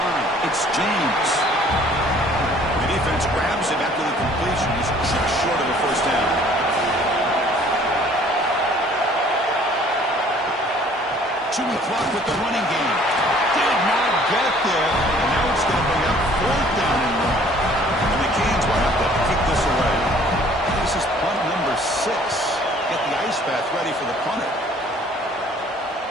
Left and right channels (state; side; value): normal; both; correlation 0.55